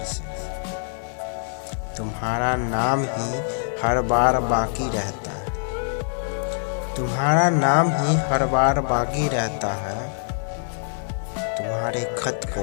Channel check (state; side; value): silent; right; digital silence